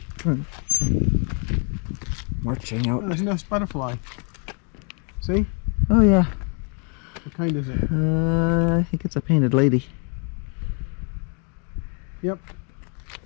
dun, dun. Marching out. Oh, there's no butterfly. See? Oh yeah. What kind is it? I think it's a painted lady. Yep.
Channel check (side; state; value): right; quieter; 37.8 dB